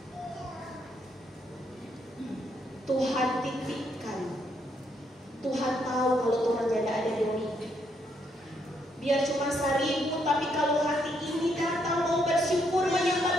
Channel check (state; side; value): normal; both; correlation 0.74